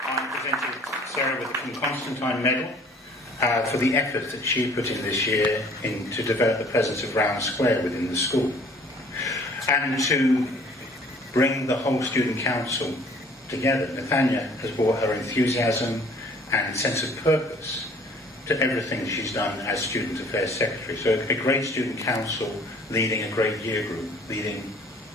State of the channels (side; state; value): both; normal; correlation 0.54